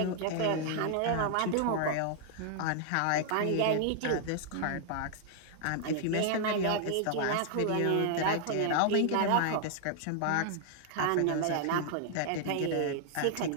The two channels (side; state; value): both; different; correlation -0.01